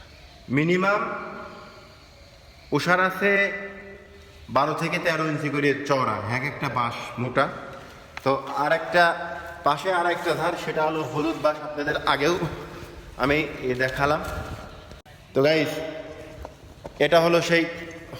মিনিমাম ওষার আছে 12 থেকে 13 ইঞ্চি করে চওড়া, এক একটা বাঁশ মোটা। তো আর একটা পাশে আর একটা ধার, সেটা হলো হলুদ বাঁশ, আপনাদের আগেও আমি দেখালাম। তো গাইস, এটা হলো সেই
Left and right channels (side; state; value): both; identical; correlation 1.00